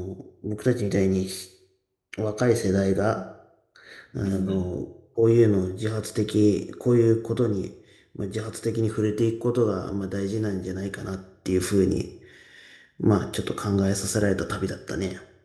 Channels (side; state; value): both; identical; correlation 1.00